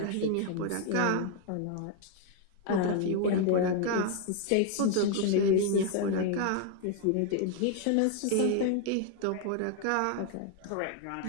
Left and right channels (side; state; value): both; different; correlation 0.00